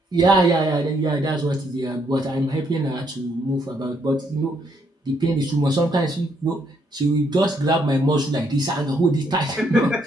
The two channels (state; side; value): normal; both; correlation 0.72